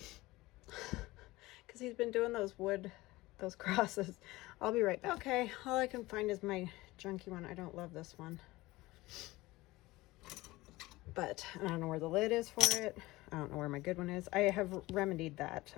Because he's been doing those crosses. I'll be right back. Okay, all I can find is my junky one. I don't love this one. But I don't know where the lid is for it. I don't know where my good one is. I have remedied that.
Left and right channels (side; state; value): right; quieter; 19.7 dB